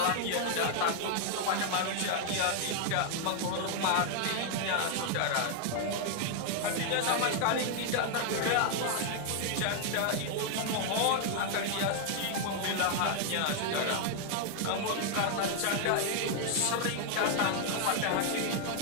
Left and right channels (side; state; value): both; different; correlation 0.00